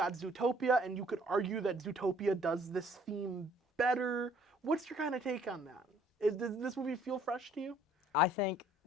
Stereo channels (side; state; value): both; normal; correlation 0.59